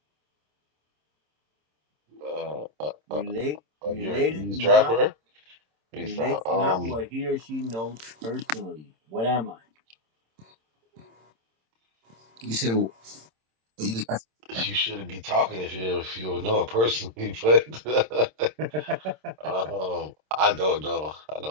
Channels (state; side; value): late; left; 26 ms